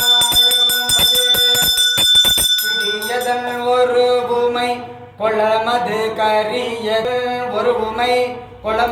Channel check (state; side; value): identical; both; correlation 1.00